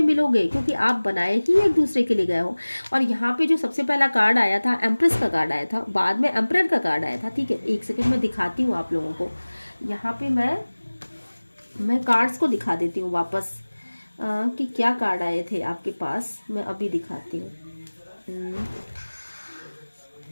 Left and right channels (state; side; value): inverted; both; correlation -1.00